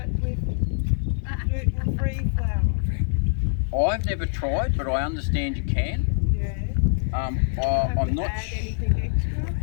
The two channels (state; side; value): silent; right; digital silence